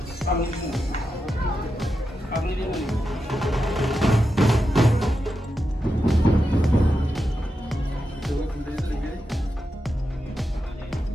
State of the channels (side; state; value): both; normal; correlation 0.88